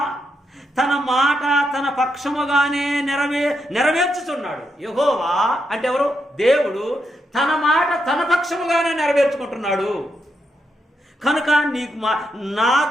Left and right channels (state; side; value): normal; both; correlation 0.82